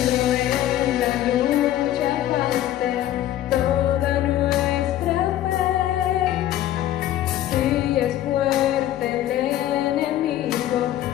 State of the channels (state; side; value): quieter; right; 12.8 dB